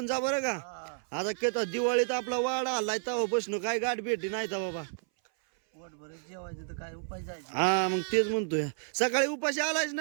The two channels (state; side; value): silent; left; 57 dB below the other